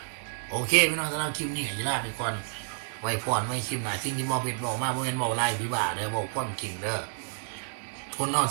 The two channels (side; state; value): left; silent; digital silence